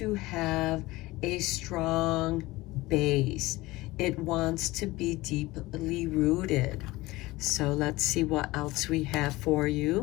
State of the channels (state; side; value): quieter; right; 19.8 dB